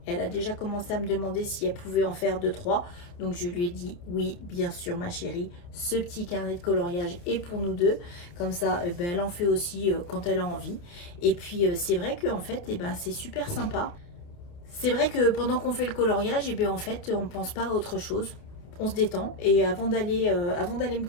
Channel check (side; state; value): right; late; 29 ms